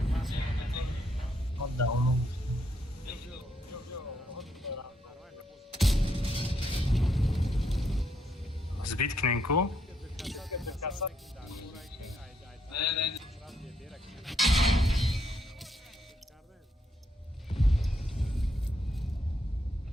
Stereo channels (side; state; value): both; normal; correlation 0.75